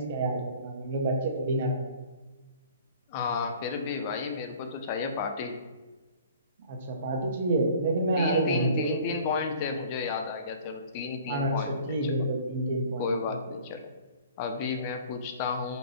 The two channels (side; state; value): both; inverted; correlation -0.48